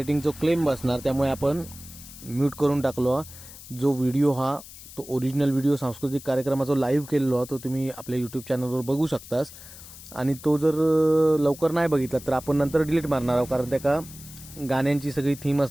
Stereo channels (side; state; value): left; noise; hiss, 16 dB below the sound